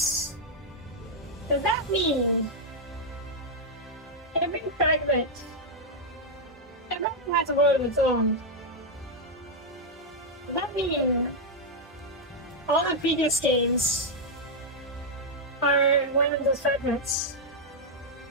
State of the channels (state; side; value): normal; both; correlation -0.02